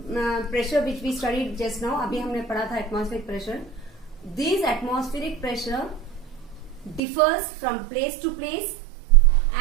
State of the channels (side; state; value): left; drops out; at 7.0 s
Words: pressure which we studied just now, अभी हमने पढ़ा था atmospheric pressure. This atmospheric pressure differs from place to place